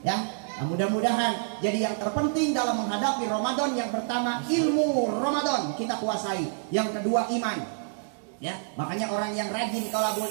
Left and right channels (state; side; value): silent; left; digital silence